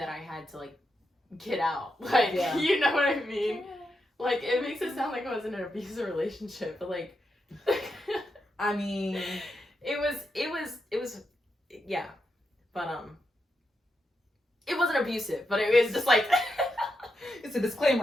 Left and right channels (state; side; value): normal; both; correlation 0.85